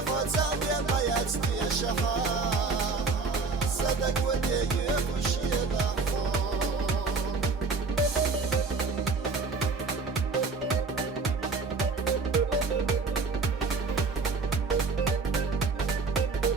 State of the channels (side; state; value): left; quieter; 4.4 dB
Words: خۆچە بێمە یاستیێشەها سەدەک و دێیوێ خوشێنە خۆ